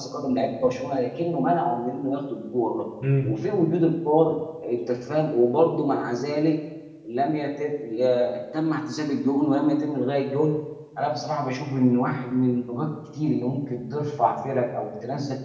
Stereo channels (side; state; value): both; identical; correlation 1.00